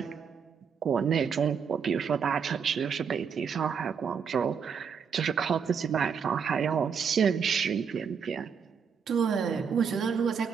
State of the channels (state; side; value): quieter; left; 6.7 dB